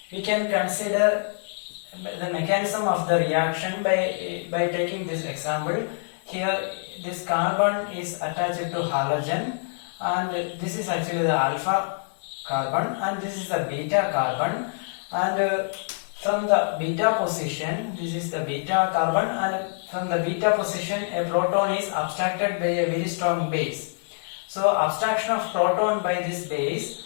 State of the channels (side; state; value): right; silent; digital silence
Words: We can consider the mechanism of the reaction by taking this example. Here this carbon is attached to halogen, and this is actually the alpha carbon, and this is the beta carbon, and from the beta position, this is the beta carbon, and from the beta position a proton is abstracted by a very strong base. So abstraction of proton by this